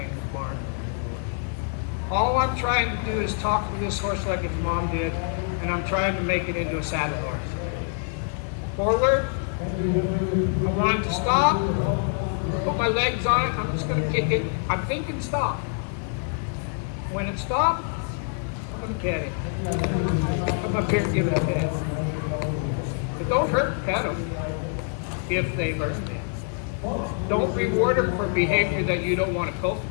in the barn. All I'm trying to do is talk to this horse like its mom did, and I'm trying to make it into a saddle horse. Forward. I want it to stop. Put my legs on it. I'm just going to kick it. I'm thinking stop. When it stops, I'm going to cat it. I'm up here and give it a pet. But don't hurt the pet them if they learn things. Don't reward them for behavior that you don't want to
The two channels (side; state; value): right; silent; 55 dB below the other